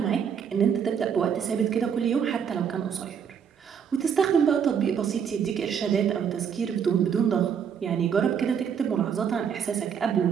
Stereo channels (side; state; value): left; quieter; 7.5 dB